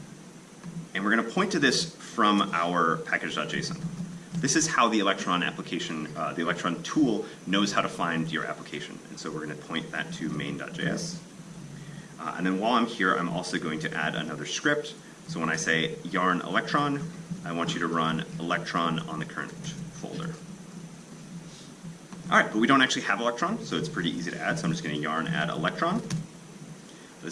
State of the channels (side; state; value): both; identical; correlation 1.00